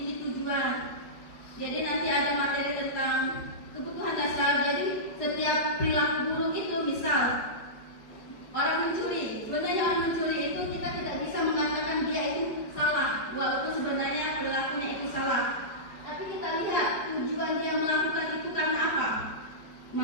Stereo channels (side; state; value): right; late; 5.0 ms